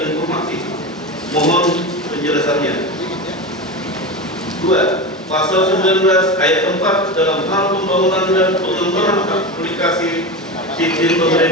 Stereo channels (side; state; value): both; normal; correlation 0.22